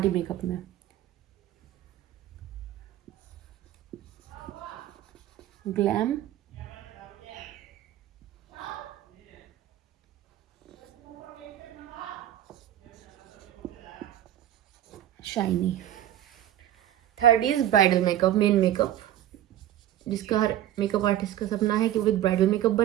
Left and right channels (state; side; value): quieter; left; 12.3 dB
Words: मेकअप में। Glam shiny. Third is bridal makeup, main makeup, जिसका हर मेकअप आर्टिस्ट का सपना है कि वो एक ब्राइडल मेकअप